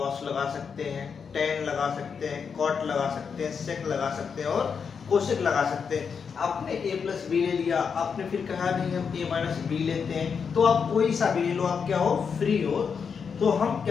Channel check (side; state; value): right; quieter; 6.2 dB